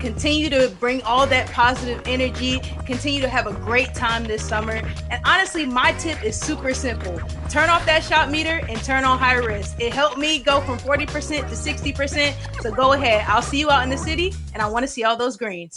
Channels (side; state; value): both; identical; correlation 1.00